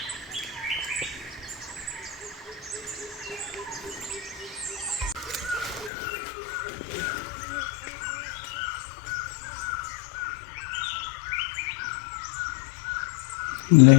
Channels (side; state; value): right; drops out; at 5.9 s